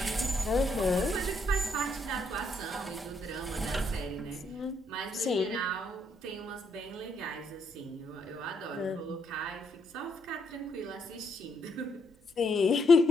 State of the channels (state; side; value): normal; both; correlation 0.75